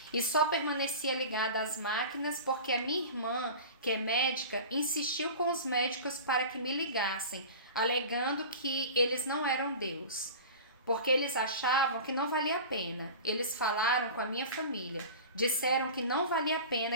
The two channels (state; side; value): inverted; both; correlation -0.35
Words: E só permanecia ligada às máquinas porque a minha irmã, que é médica, insistiu com os médicos para que me ligassem, alegando que eles não eram Deus. Porque eles achavam que não valia a pena. Eles falaram com a minha família. Disseram que não valia a